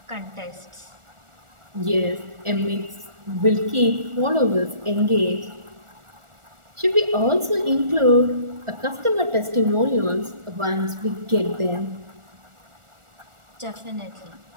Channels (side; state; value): left; late; 1.4 ms